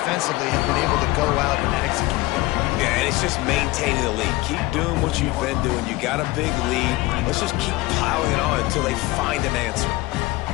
have been able to go out and execute. Yeah, and it's just maintaining the lead. Keep doing what you've been doing. You got a big lead. Let's just keep piling it on until they find an answer.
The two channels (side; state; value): right; quieter; 20.1 dB